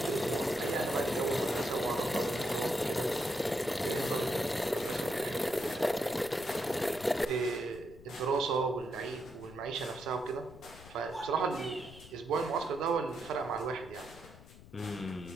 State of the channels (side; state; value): left; noise; rumble, 19 dB below the sound